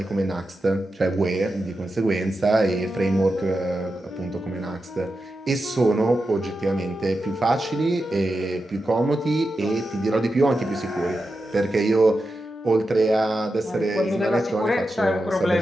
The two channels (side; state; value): both; normal; correlation 0.89